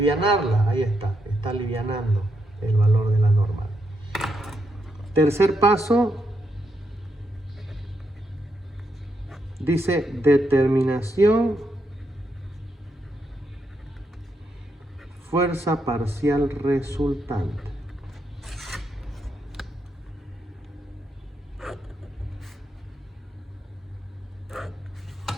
Ahí está alivianando el valor de la normal. Tercer paso, dice determinación fuerza parcial resultante.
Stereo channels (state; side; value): normal; both; correlation 0.80